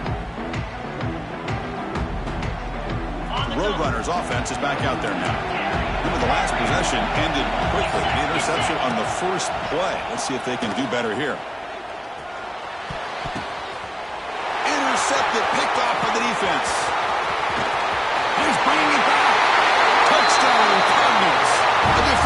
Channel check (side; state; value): both; identical; correlation 1.00